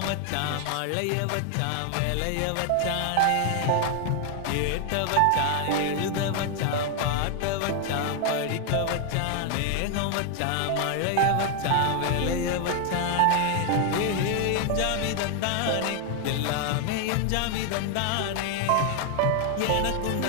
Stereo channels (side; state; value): both; different; correlation 0.00